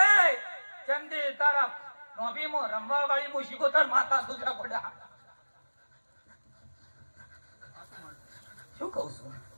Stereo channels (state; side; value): inverted; both; correlation -1.00